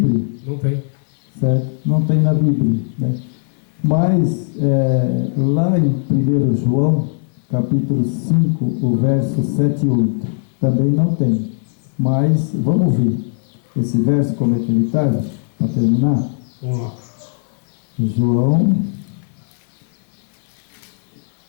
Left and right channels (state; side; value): silent; right; 57 dB below the other